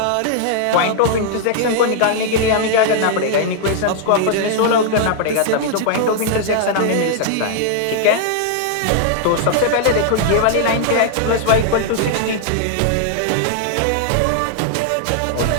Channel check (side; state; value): both; different; correlation 0.00